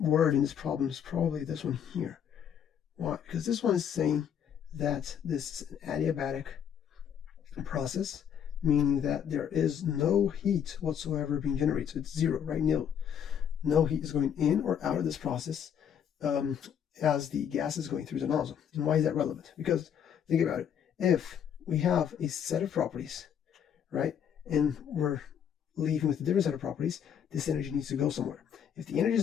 in this problem is probably this one here. Why? Because this one is saying that this is an adiabatic process, meaning that there is no heat whatsoever being generated. So it's zero, right? Nil. No heat is going in or out of this process as the gas is going through the nozzle. And why is that relevant? Because think about it. If we have a set of properties, right, and we're leaving with a different set of properties, this energy needs to go somewhere. If the energy is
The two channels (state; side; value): quieter; right; 8.5 dB